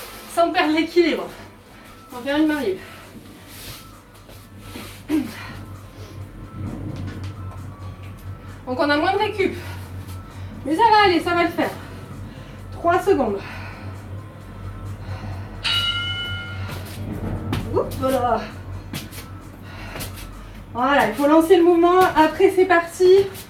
Sans perdre l'équilibre. On va faire une main libre. Donc on a moins de récup. Mais ça va aller, ça va le faire. 3 secondes. Oups, voilà. Voilà, il faut lancer le mouvement. Après, c'est parti.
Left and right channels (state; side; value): identical; both; correlation 1.00